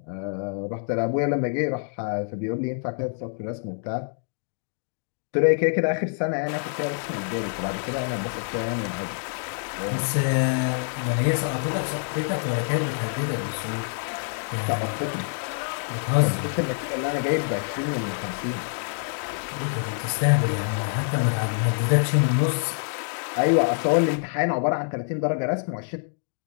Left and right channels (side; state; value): right; silent; digital silence